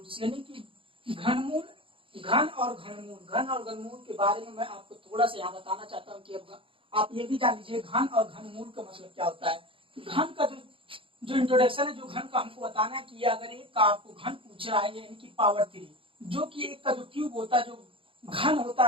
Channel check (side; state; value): left; late; 0.26 ms